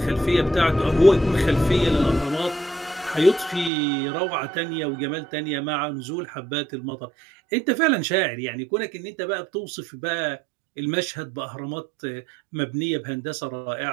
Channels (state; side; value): drops out; left; at 3.7 s